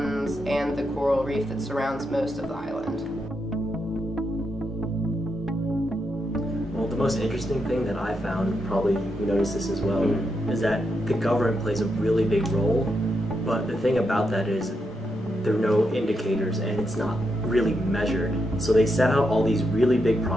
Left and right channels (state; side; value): normal; both; correlation 0.83